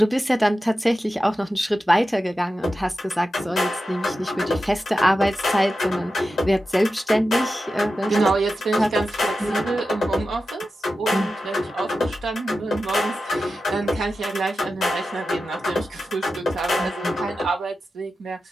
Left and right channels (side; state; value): both; normal; correlation 0.92